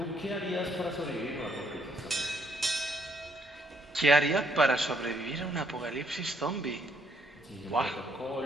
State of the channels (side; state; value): both; normal; correlation 0.70